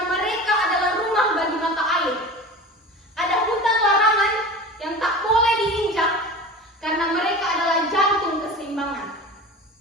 mereka adalah rumah bagi mata air. Ada hutan larangan yang tak boleh diinjak karena mereka adalah jantung keseimbangan.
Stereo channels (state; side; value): normal; both; correlation 0.34